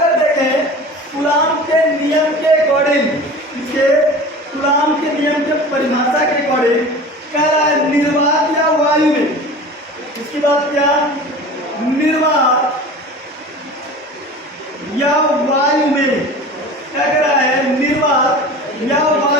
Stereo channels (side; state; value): both; normal; correlation 0.37